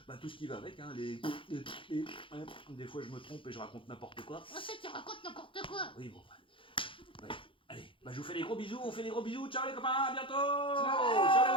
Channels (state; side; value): late; right; 0.25 ms